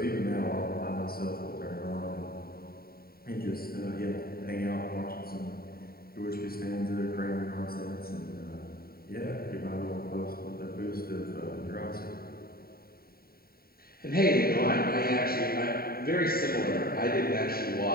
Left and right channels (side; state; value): right; late; 0.44 ms